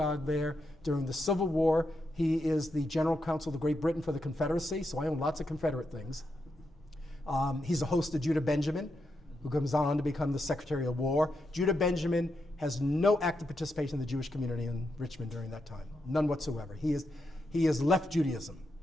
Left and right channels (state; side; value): normal; both; correlation 0.84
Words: there. During the Civil War, he is the General Counsel of Great Britain for the Confederacy, so I own lots of Confederate things. He's a host of Judah Benjamin, who comes on to become the Secretary of War. Judah Benjamin has no active participation in the Jewish community in Richmond during that time, none whatsoever. He has left Judaism,